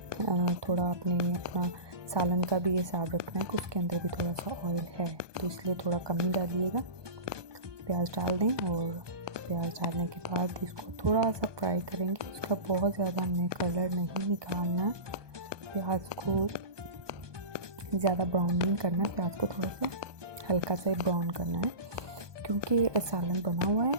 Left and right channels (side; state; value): left; late; 1.2 ms